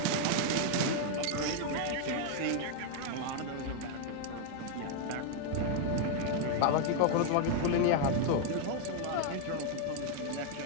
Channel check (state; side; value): different; both; correlation 0.00